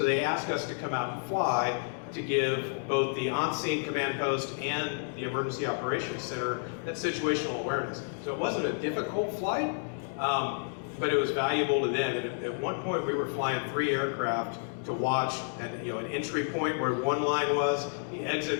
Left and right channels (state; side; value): silent; right; digital silence